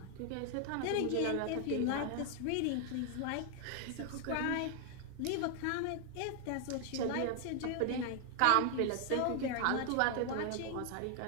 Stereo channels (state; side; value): different; both; correlation 0.00